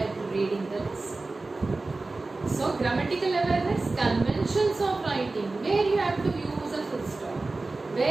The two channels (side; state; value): left; quieter; 3.4 dB